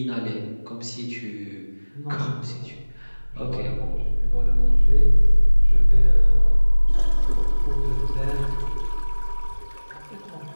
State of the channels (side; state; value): both; inverted; correlation -1.00